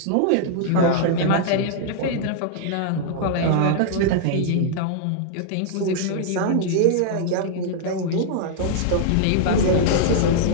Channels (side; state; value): both; different; correlation -0.01